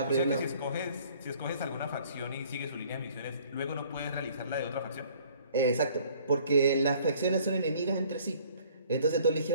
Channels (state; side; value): inverted; both; correlation -0.56